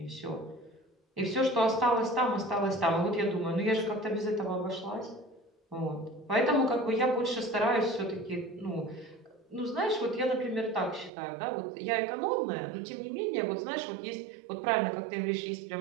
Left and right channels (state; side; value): drops out; left; at 11.1 s